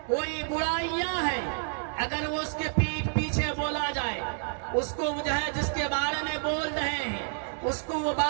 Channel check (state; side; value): silent; left; 58 dB below the other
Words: کوئی برائیاں ہیں، اگر وہ اس کے پیٹھ پیچھے بولا جائے، اس کو جو ہے جس کے بارے میں بول رہے ہیں اس کو وہ